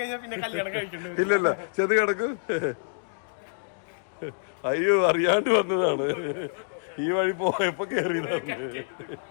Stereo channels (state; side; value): silent; right; digital silence